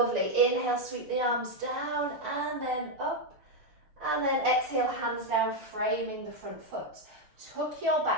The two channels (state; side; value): late; left; 6.5 ms